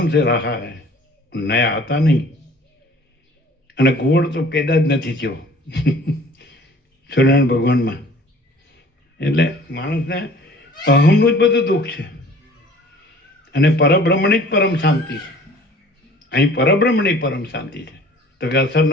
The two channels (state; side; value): normal; both; correlation 0.50